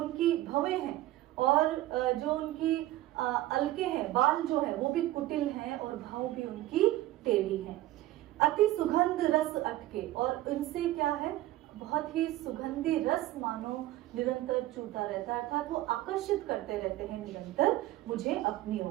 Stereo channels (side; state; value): left; quieter; 15.9 dB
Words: भवें हैं और जो उनकी अलके हैं, बाल जो है वो भी कुटिल हैं और भाव भी उनकी टेढ़ी हैं। अति सुगंध रस अटके, और इनसे क्या है, बहुत ही सुगंधी रस मानो निरंतर चूता रहता है, अर्थात वो आकर्षित करते रहते हैं निरंतर मुझे अपनी